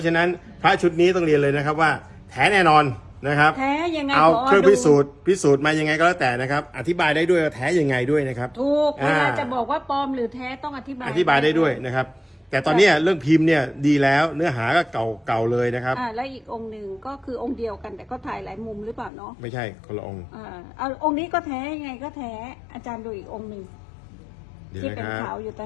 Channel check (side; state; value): right; drops out; at 19.1 s